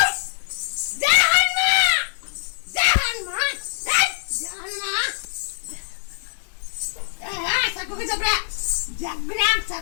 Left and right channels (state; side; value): silent; right; digital silence